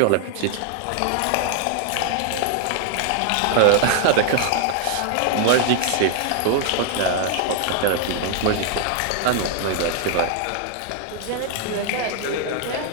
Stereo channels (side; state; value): both; different; correlation 0.00